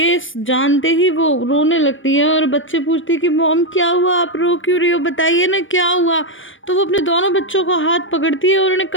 जानते ही वो रोने लगती है और बच्चे पूछती है कि मॉम क्या हुआ, आप रो क्यों रही हो, बताइए ना क्या हुआ। तो वो अपने दोनों बच्चों का हाथ पकड़ती है और उन्हें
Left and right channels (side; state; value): right; late; 0.57 ms